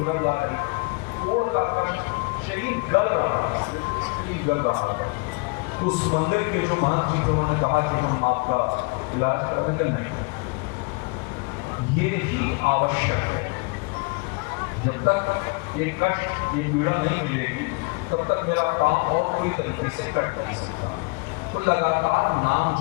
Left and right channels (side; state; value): right; quieter; 29.9 dB